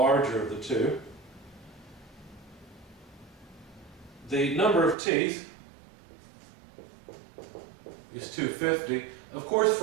of the two. The number of teeth is 250. Of course,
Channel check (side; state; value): left; drops out; at 5.0 s